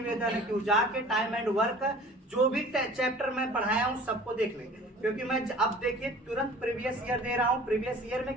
है कि जाके टाइम एंड वर्क जो भी चैप्टर मैं पढ़ाया हूँ सबको देख लेंगे, क्योंकि मैं अब देखिए तुरंत प्रीवियस ईयर दे रहा हूँ। प्रीवियस ईयर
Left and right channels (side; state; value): both; normal; correlation 0.46